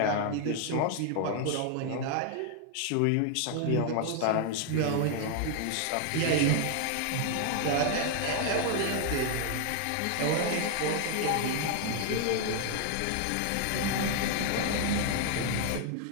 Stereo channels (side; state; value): both; different; correlation 0.00